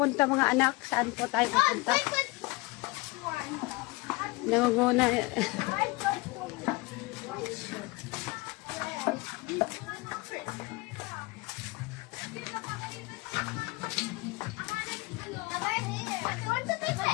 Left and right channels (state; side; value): quieter; right; 24.0 dB